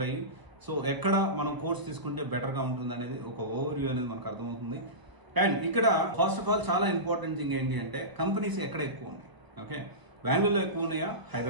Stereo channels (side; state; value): left; late; 1.0 ms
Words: సో ఎక్కడ మనం కోర్స్ తీసుకుంటే బెటర్ గా ఉంటుంది అనేది ఒక ఓవర్ వ్యూ అనేది మనకు అర్థమవుతుంది. అండ్ ఇక్కడ ఫస్ట్ ఆఫ్ ఆల్ చాలా ఇంపార్టెంట్ థింగ్ ఏంటి అంటే కంపెనీస్ ఎక్కడ ఎక్కువ ఉన్నాయి. ఓకే, బెంగళూరులో ఎక్కువ ఉన్నాయా,